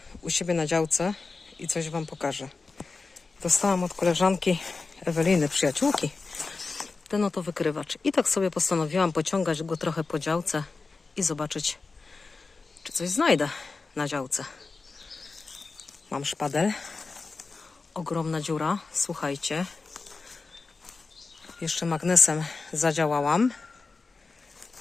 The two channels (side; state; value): right; quieter; 4.1 dB